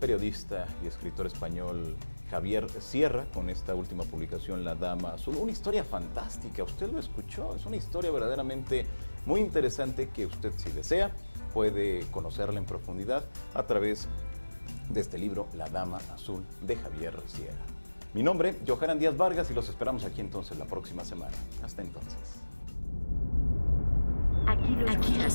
y escritor español Javier Sierra con esta última publicación, La Dama Azul. Una historia fantástica, usted lo escuchó, es una historia verdaderamente muy interesante que usted, si desea, puede conocerla en profundidad a través de este libro, La Dama Azul, de Javier Sierra. Mi nombre, Johanan Díaz Vargas, y los esperamos aquí entonces la próxima semana. Hasta entonces. Aquí lo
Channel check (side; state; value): both; inverted; correlation -1.00